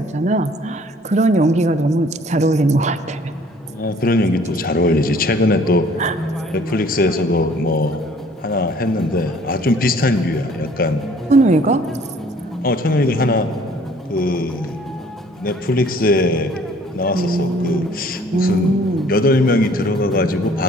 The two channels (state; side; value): normal; both; correlation 0.56